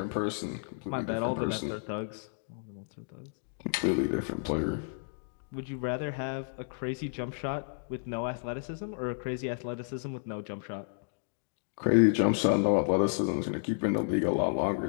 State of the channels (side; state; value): right; silent; digital silence